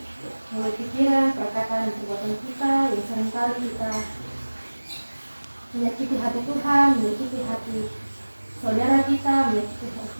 melalui pikiran, perkataan, dan perbuatan kita yang seringkali kita menyakiti hati Tuhan, menyakiti hati saudara kita, menyakiti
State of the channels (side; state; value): both; inverted; correlation -1.00